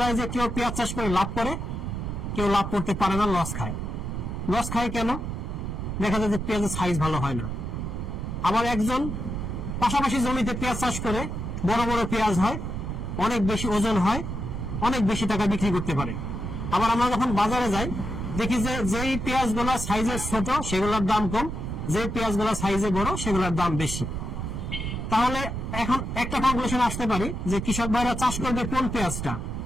যায় যে কেউ পেঁয়াজ চাষ করে লাভ করে, কেউ লাভ করতে পারে না, লস খায়। কেন? দেখা যায় যে পেঁয়াজের সাইজ ভালো হয় না। আবার একজন পাশাপাশি জমিতে পেঁয়াজ চাষ করে বড় বড় পেঁয়াজ হয়, অনেক বেশি ওজন হয়, অনেক বেশি টাকা বিক্রি করতে পারে। আবার আমরা যখন বাজারে যাই দেখি যে যেই পেঁয়াজগুলা সাইজে ছোট সেগুলোর দাম কম, যে পেঁয়াজগুলা সাইজে বড় সেগুলোর দাম বেশি। তাহলে এখন একটা কনক্লুশন আসতে পারি যে কৃষক ভাইরা চাষ করবে কোন পেঁয়াজটা,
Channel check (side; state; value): right; noise; rumble, 4 dB below the sound